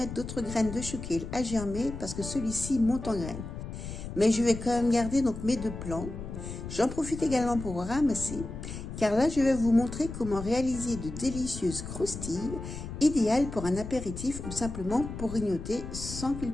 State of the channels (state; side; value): noise; left; rumble, 9 dB below the sound